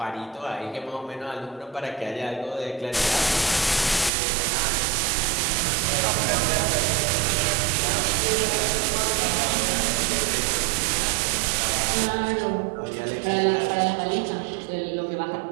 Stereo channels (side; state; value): left; drops out; at 4.1 s